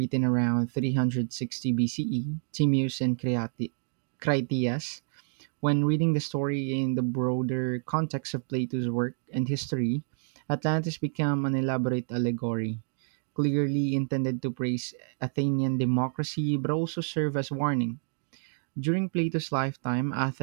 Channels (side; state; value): left; silent; digital silence